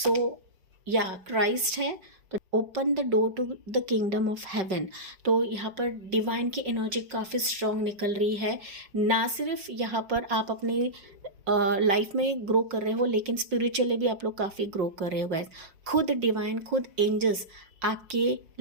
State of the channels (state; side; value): late; left; 5.2 ms